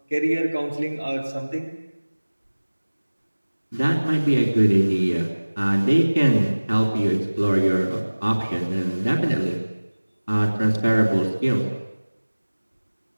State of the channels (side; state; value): both; inverted; correlation -1.00